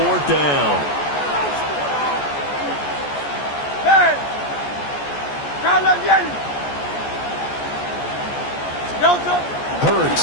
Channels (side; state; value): right; late; 14 ms